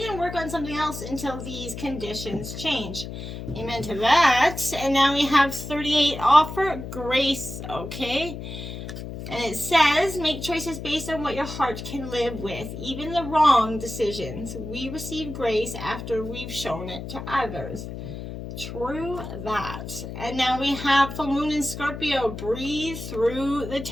and work on something else until these conditions change. Amen to that. And now we have 38. Offer grace, okay? And it says, make choices based on what your heart can live with, even the wrong decisions. We receive grace after we've shown it to others. True that. And now we have full moon in Scorpio. Breathe through the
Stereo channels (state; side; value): noise; left; hum, 9 dB below the sound